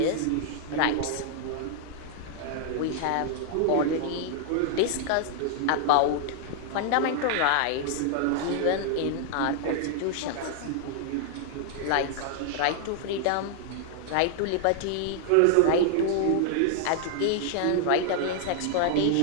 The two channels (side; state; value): both; different; correlation -0.01